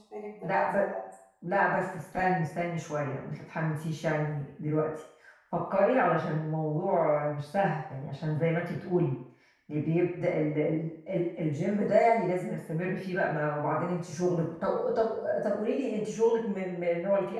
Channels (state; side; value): identical; both; correlation 1.00